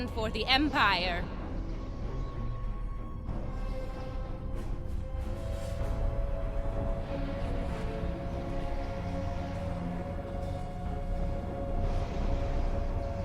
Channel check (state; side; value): identical; both; correlation 1.00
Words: for the Empire.